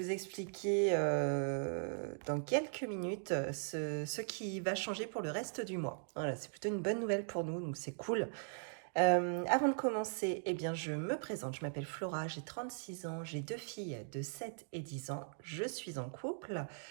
vous expliquer dans quelques minutes ce qui va changer pour le reste du mois. Voilà, c'est plutôt une bonne nouvelle pour nous, donc c'est cool. Avant de commencer, eh bien, je me présente. Je m'appelle Flora, j'ai 36 ans, j'ai 2 filles de 7 et 10 ans. Je suis en couple.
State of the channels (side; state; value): left; silent; digital silence